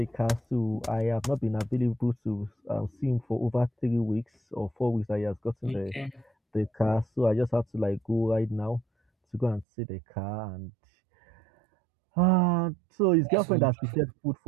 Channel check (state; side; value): drops out; left; at 9.7 s